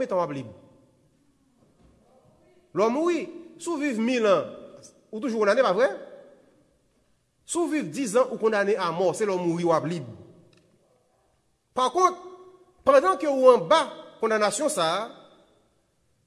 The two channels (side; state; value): both; identical; correlation 1.00